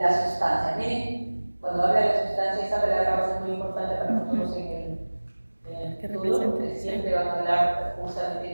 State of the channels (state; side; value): inverted; both; correlation -1.00